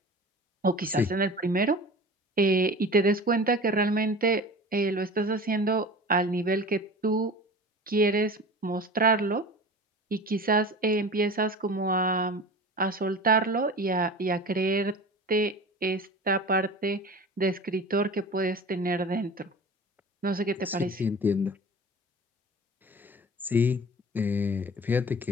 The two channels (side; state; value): both; normal; correlation 0.37